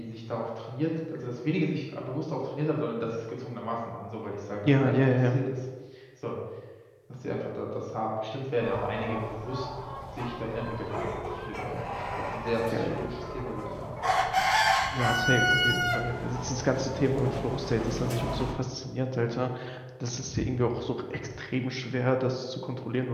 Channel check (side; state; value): both; identical; correlation 1.00